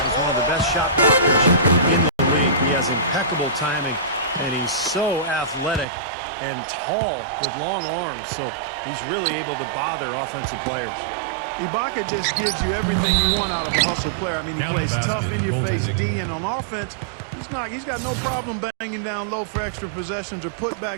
as one of the best shot blockers in the league. He has impeccable timing, and he's so athletic and tall with long arms, so he's really able to bother offensive players. Ibaka just gives you everything you want out of a hustle player. I mean, he plays tough, in-your-face D, and on offense, he's got no problem banging down low for extra possessions or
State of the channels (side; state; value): left; drops out; at 5.9 s